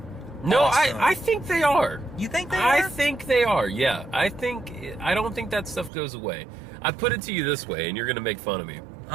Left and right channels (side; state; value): left; drops out; at 5.9 s